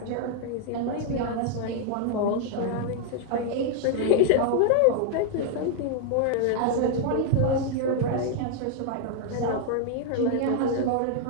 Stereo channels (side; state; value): both; different; correlation 0.00